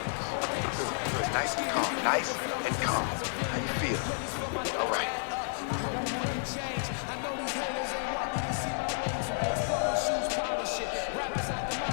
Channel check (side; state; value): right; silent; digital silence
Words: Good. Nice and calm. Nice and calm. How you feel? All right.